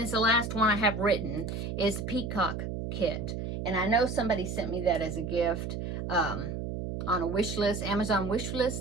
the last one I have written, is the Peacock kit. And I know somebody sent me that as a gift on a wish list, Amazon wish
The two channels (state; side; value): noise; right; hum, 5 dB below the sound